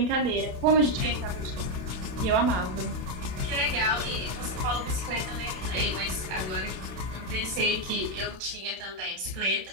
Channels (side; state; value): left; late; 32 ms